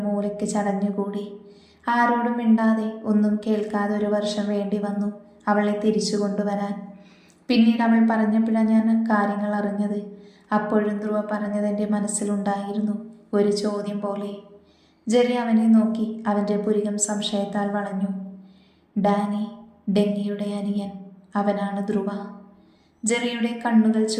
മൂലയ്ക്ക് ചടഞ്ഞുകൂടി. ആരോടും മിണ്ടാതെ ഒന്നും കേൾക്കാതെ 1 വർഷം വേണ്ടി വന്നു അവളെ തിരിച്ചു കൊണ്ടുവരാൻ. പിന്നീട് അവൾ പറഞ്ഞപ്പോഴാണ് ഞാൻ കാര്യങ്ങൾ അറിഞ്ഞത്. അപ്പോഴും ധ്രുവ പറഞ്ഞത് എൻ്റെ മനസ്സിലുണ്ടായിരുന്നു, ഒരു ചോദ്യം പോലെ. ജെറി അവനെ നോക്കി. അവൻ്റെ പുരികം സംശയത്താൽ വളഞ്ഞു. ഡാനി, ഡെന്നിയുടെ അനിയൻ, അവനാണ് ധ്രുവ. ജെറിയുടെ കണ്ണുകൾ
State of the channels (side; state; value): both; identical; correlation 1.00